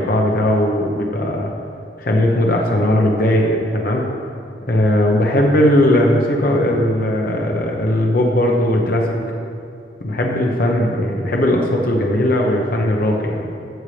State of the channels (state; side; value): normal; both; correlation 0.66